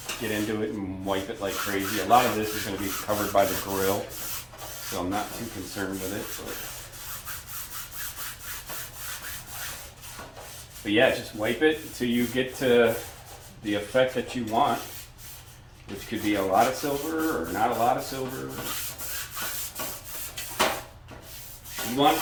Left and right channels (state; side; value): identical; both; correlation 1.00